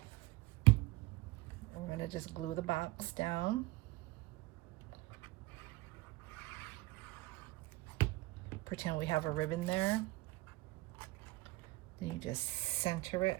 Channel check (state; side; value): quieter; left; 21.1 dB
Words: we're going to just glue the box down. pretend we have a ribbon there. Then you just center it